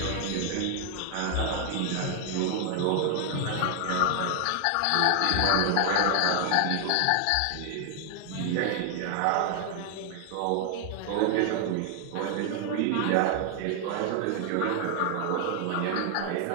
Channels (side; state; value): both; different; correlation 0.00